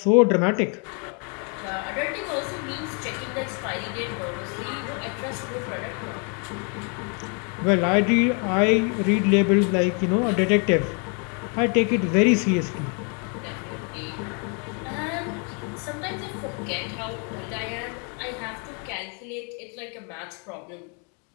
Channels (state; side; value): quieter; right; 37.4 dB